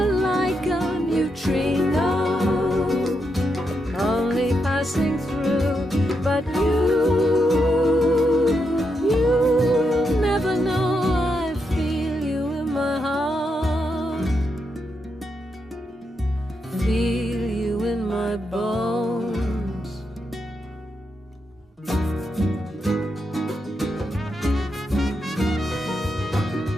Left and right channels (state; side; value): normal; both; correlation 0.83